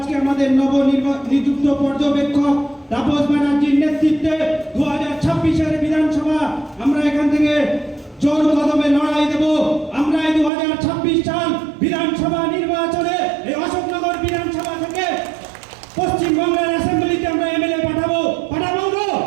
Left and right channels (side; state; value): left; drops out; at 10.5 s